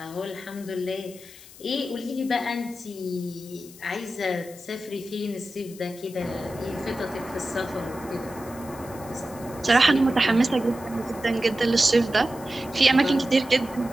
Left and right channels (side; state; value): left; noise; hiss, 19 dB below the sound